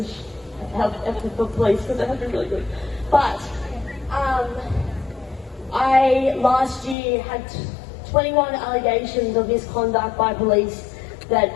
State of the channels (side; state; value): right; drops out; at 7.0 s